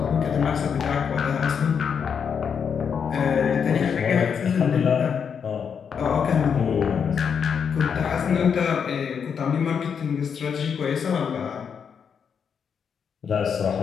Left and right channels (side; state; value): right; quieter; 7.0 dB